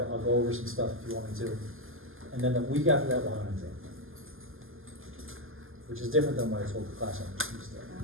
I'll go over some stuff if you want me to. And then the week after that, we'll have an exam. Which is different than what I told the class on Tuesday.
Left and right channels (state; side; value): late; left; 0.59 ms